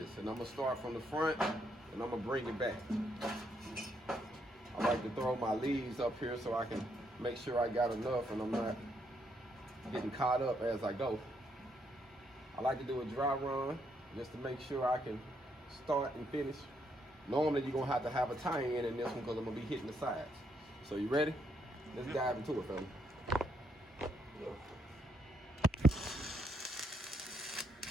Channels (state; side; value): normal; both; correlation 0.75